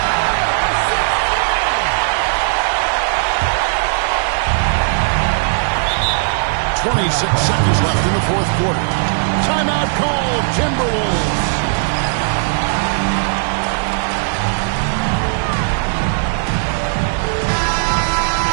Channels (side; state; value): left; silent; 55 dB below the other